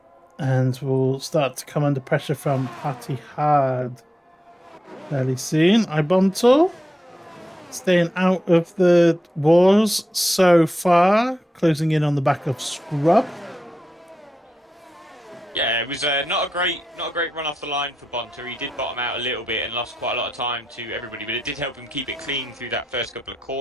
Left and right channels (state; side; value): normal; both; correlation 0.88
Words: And we'll start to come under pressure from Patty Hard fairly soon. Ibonto staying out of the wars so far, closing in on the back of Scrub. Yeah, it was not a great run off the line for Bonter. He did bottom out a little bit and lost quite a lot of time to everybody, but it did help him keep it clean through that first couple of